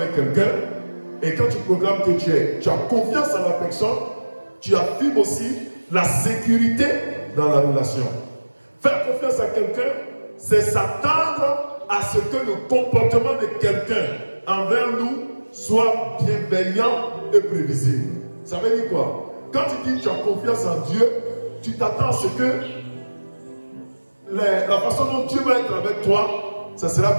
quelqu'un et quand tu proclames que tu as confiance en la personne, tu affirmes aussi la sécurité dans la relation. Faire confiance à quelqu'un, c'est s'attendre à ce que le comportement de quelqu'un envers nous soit bienveillant et prévisible. Ça veut dire quoi? Quand tu dis que tu as confiance en Dieu, tu t'attends à ce que la façon dont Dieu va être avec toi, ça sera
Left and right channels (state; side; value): inverted; both; correlation -1.00